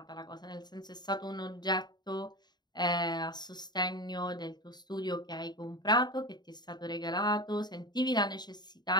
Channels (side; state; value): right; late; 0.20 ms